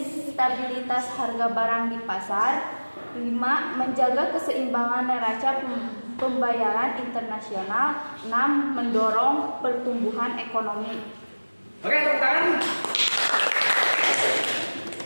stabilitas harga barang di pasar. 5. Menjaga keseimbangan neraca pembayaran internasional. 6. Mendorong pertumbuhan ekonomi. Oke, tepuk tangan.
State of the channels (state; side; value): inverted; both; correlation -1.00